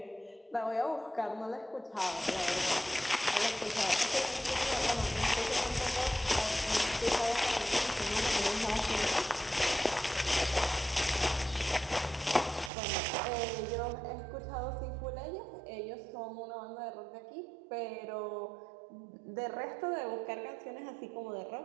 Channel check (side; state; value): left; drops out; at 12.7 s